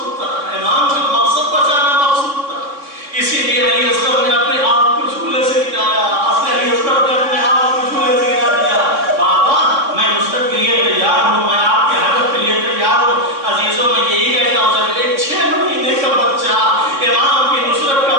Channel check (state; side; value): late; left; 3.6 ms